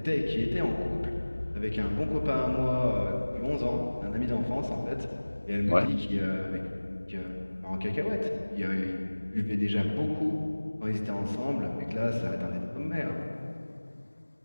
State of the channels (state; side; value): inverted; both; correlation -1.00